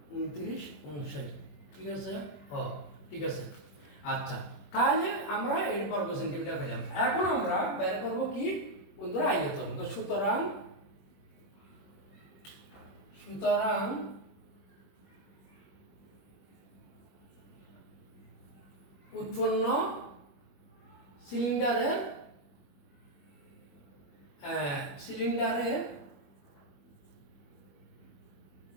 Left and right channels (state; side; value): late; right; 21 ms